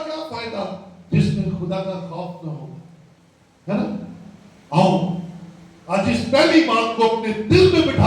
کیا فائدہ جس میں خدا کا خوف نہ ہو, ہے نا. آؤ آج اس پہلی بات کو اپنے دل میں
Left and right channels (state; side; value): identical; both; correlation 1.00